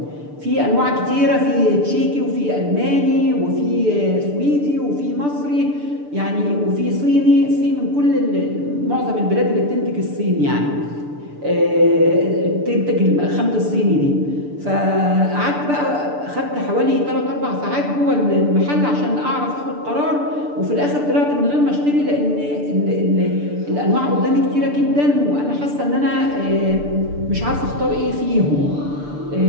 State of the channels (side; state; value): left; late; 6.8 ms